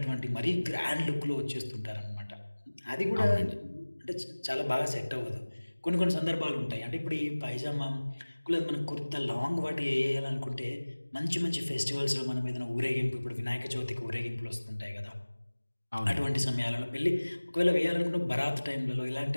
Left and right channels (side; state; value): both; inverted; correlation -1.00